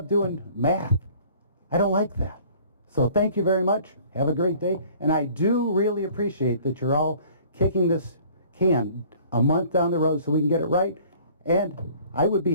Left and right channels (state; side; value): inverted; both; correlation -0.52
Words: doing math. I don't like that. So thank you very much. Have a great day. And I do really appreciate that you're all kicking this can a month down the road so we can get it right. And I would be